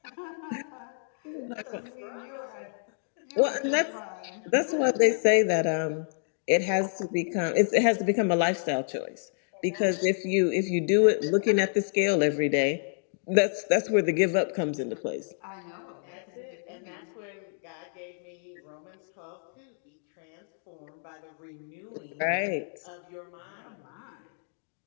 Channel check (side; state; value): right; silent; digital silence